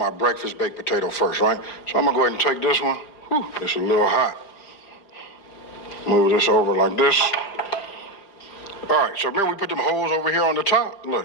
breakfast baked potato first, right? So I'm gonna go ahead and take this one. Whew, it's a little hot. Move this over like this. All right, so remember we put them holes over here on the top?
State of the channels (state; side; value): late; right; 4.9 ms